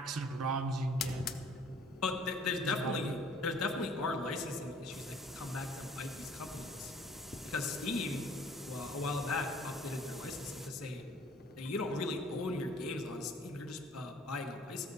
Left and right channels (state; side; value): normal; both; correlation 0.54